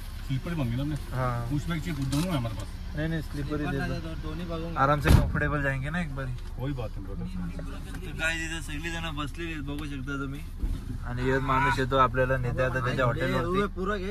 स्लीपर बन गया ना हमने। हाँ पुश बैग चाहिए, दोनों है हमारे पास। नहीं स्लीपर ही दे दो. दोन्ही बघून आराम से कंफर्टेबल जाएंगे ना एक बारी. कोई बात नहीं ब्रदर। तर काय तिथे सगळी जण बसलेली आहेत बघू शकता तुम्ही. आणि एक माणूस येतो आपल्याला नेते आता त्याच्या हॉटेलवरती. पुरं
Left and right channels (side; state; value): both; identical; correlation 1.00